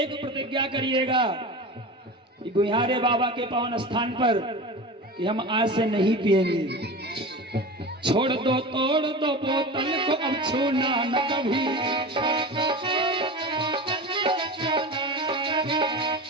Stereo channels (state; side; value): normal; both; correlation 0.30